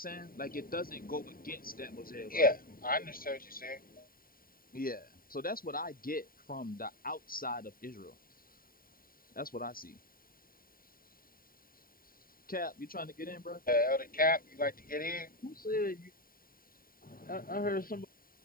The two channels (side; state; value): right; late; 0.42 ms